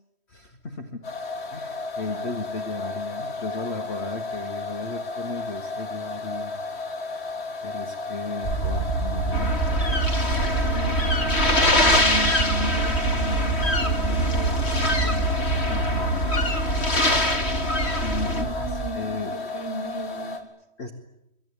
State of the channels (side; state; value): right; late; 3.1 ms